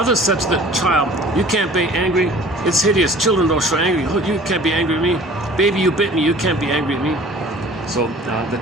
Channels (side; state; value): both; normal; correlation 0.48